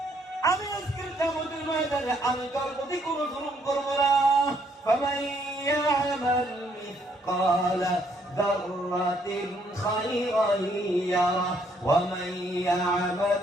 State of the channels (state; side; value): normal; both; correlation 0.69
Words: আমি আজকের কিয়ামতের ময়দানে আমি তোর প্রতি কোনো জুলুম করব না। فمن يعمل مثقال ذرة خيرا يره ومن يعمل